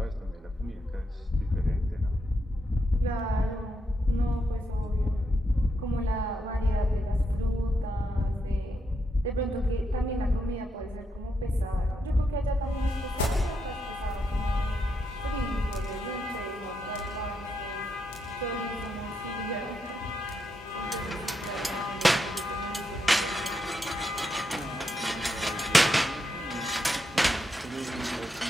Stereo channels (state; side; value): normal; both; correlation 0.82